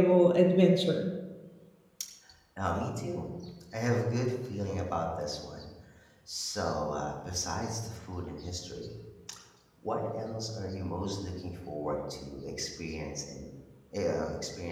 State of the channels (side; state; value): both; identical; correlation 1.00